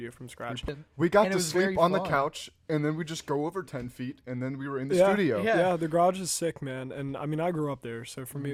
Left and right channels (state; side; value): identical; both; correlation 1.00